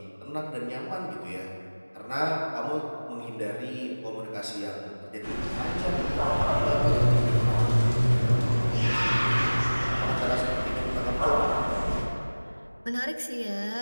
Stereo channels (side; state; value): both; inverted; correlation -1.00